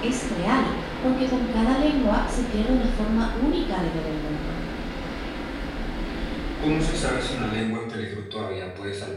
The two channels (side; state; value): both; identical; correlation 1.00